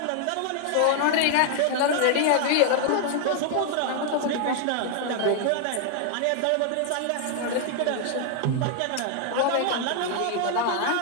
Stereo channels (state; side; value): different; both; correlation 0.00